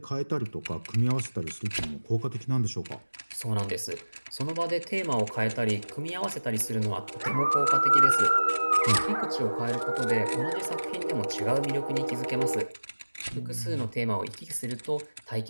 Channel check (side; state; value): both; inverted; correlation -1.00